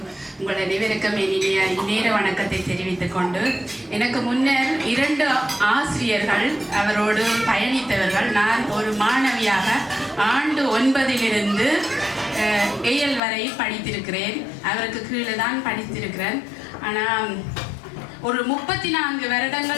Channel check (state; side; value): drops out; right; at 13.2 s